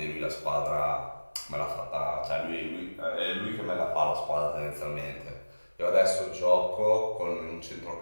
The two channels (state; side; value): inverted; both; correlation -1.00